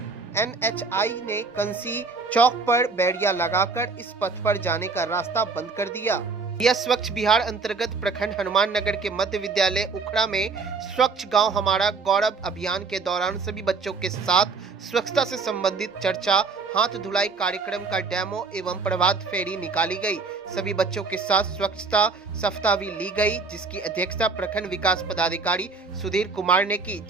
NHI ने कंसी चौक पर बैरिया लगाकर इस पथ पर जाने का रास्ता बंद कर दिया। यह स्वच्छ बिहार अंतर्गत प्रखंड हनुमान नगर के मध्य विद्यालय उखड़ा में स्वच्छ गांव हमारा गौरव अभियान के दौरान सभी बच्चों के साथ स्वच्छता से संबंधित चर्चा, हाथ धुलाई कार्यक्रम का डेमो एवं प्रभात फेरी निकाली गई। सभी बच्चों के साथ स्वच्छता सप्ताह भी ली गई, जिसकी अध्यक्षता प्रखंड विकास पदाधिकारी सुधीर कुमार ने की,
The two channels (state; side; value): quieter; left; 4.5 dB